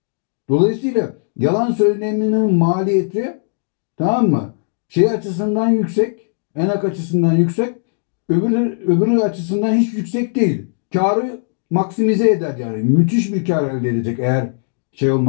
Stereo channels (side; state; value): right; silent; digital silence